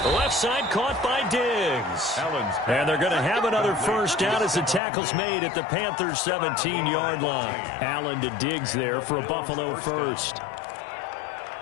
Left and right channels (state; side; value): drops out; right; at 4.8 s